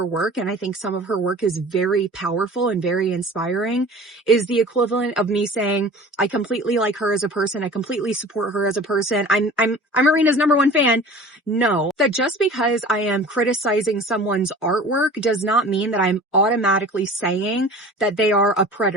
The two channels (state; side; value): normal; both; correlation 0.42